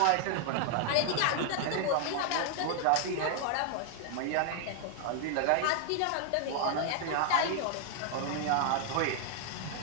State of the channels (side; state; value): both; different; correlation 0.00